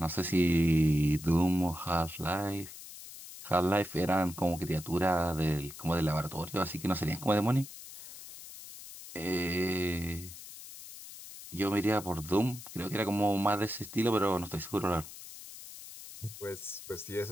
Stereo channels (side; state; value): left; noise; hiss, 14 dB below the sound